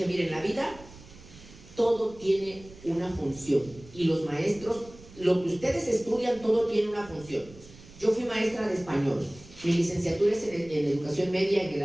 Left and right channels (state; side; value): noise; right; rumble, 20 dB below the sound